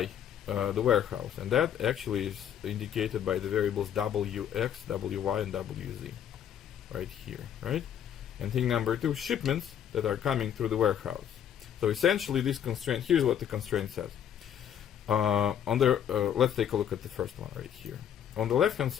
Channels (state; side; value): quieter; right; 9.3 dB